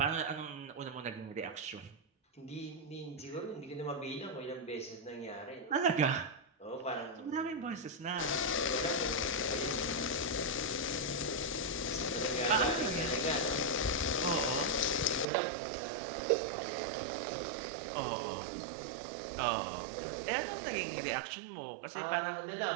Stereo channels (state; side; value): drops out; left; at 15.2 s